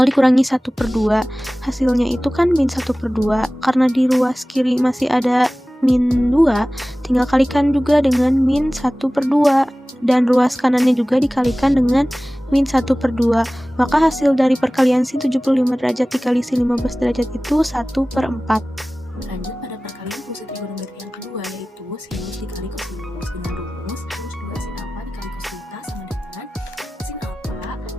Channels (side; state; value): both; normal; correlation 0.97